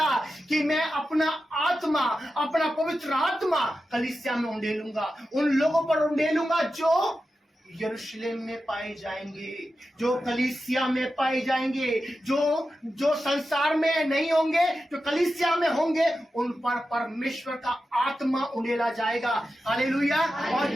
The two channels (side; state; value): both; normal; correlation 0.91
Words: कि मैं अपना आत्मा, अपना पवित्र आत्मा कलीसिया में उंडेलूंगा, उन लोगों पर उंडेलूंगा जो यरूशलेम में पाए जाएंगे, जो कलीसिया में पाए जाएंगे, जो संसार में नहीं होंगे, जो कलीसिया में होंगे, उन पर परमेश्वर का आत्मा उंडेला जाएगा। हालेलुया। और